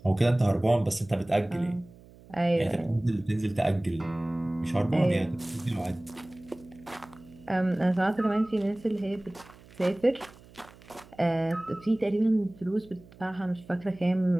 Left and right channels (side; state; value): right; noise; hum, 23 dB below the sound